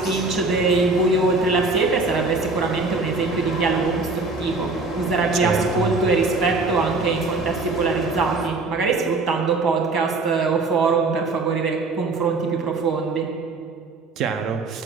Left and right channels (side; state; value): left; quieter; 3.6 dB